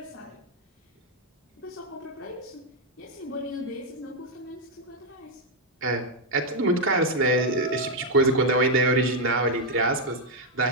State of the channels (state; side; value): normal; both; correlation 0.01